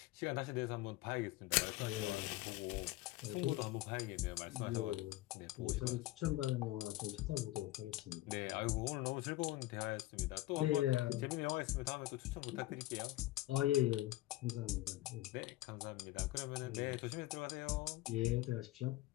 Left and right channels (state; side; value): quieter; right; 17.1 dB